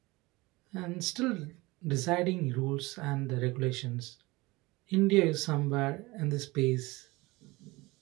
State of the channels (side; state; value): left; quieter; 22.2 dB